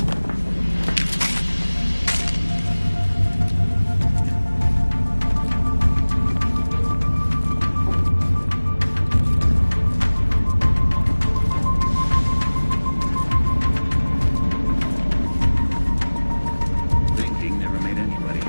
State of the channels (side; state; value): both; inverted; correlation -1.00